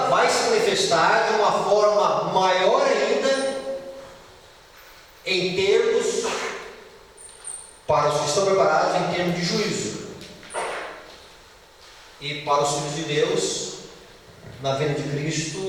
vai se manifestar de uma forma maior ainda, em termos, para os que estão preparados, em termos de juízo. E para os filhos de Deus, na vinda de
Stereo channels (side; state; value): both; identical; correlation 1.00